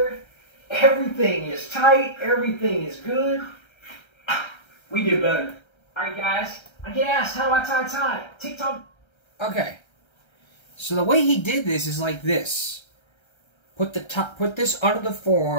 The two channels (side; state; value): right; late; 1.3 ms